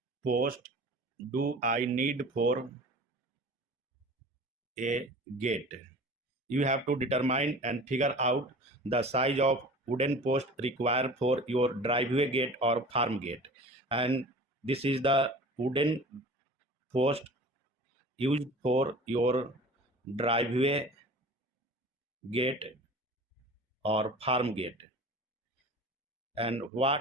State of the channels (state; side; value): normal; both; correlation 0.40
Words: post do I need for a gate. You have to determine and figure out the size of wooden post required for your driveway gate or farm gate. And this is the wooden post used for your driveway gate or farm gate. And